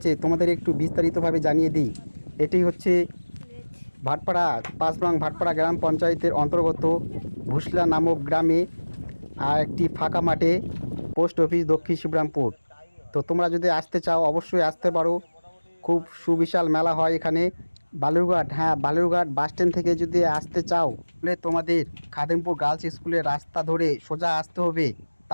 তোমাদের একটু বিস্তারিতভাবে জানিয়ে দিই। এটি হচ্ছে ভাটপাড়া, 5 নং ভাটপাড়া গ্রাম পঞ্চায়েতের অন্তর্গত ভুসলা নামক গ্রামে, আর একটি ফাঁকা মাঠে, পোস্ট অফিস, দক্ষিণ শিবরামপুর। তো তোমরা যদি আসতে চাও অবশ্যই আসতে পারো। খুব সুবিশাল মেলা হয় এখানে। বালুরঘাট, হ্যাঁ বালুরঘাট বাস স্ট্যান্ড থেকে যদি আসতে চাও তাহলে তোমাদের খাদিমপুর গার্লস স্কুলের রাস্তা ধরে সোজা আসতে হবে,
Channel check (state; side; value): inverted; both; correlation -1.00